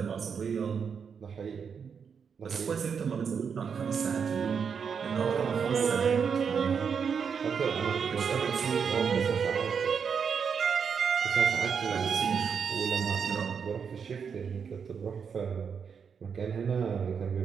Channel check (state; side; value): quieter; left; 6.5 dB